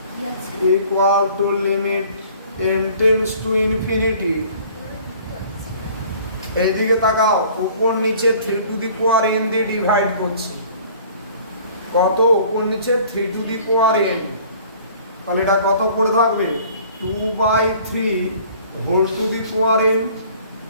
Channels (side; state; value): both; inverted; correlation -0.51